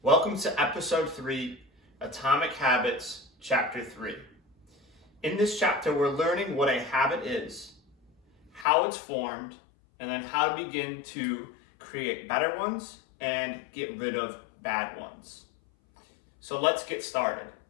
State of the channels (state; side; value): drops out; right; at 8.7 s